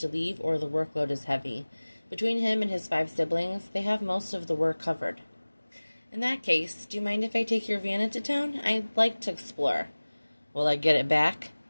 leave or the workload is heavy. Between him and his 5 siblings, they have most of the work covered. "In that case, do you mind if I take your van into town? I'd like to explore." "Will I get it back?"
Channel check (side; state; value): both; inverted; correlation -1.00